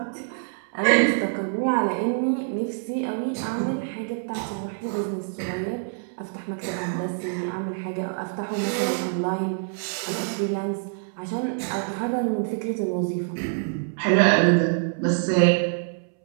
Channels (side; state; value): left; silent; 61 dB below the other